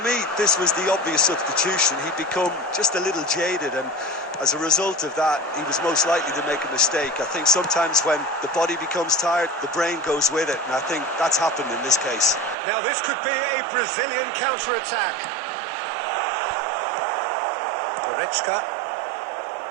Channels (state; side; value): drops out; left; at 12.6 s